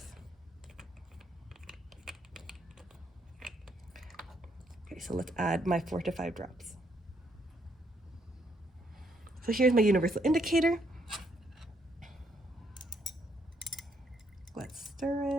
Okay, so let's add my 4 to 5 drops. So here's my universal indicator. Let's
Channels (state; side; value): normal; both; correlation 0.72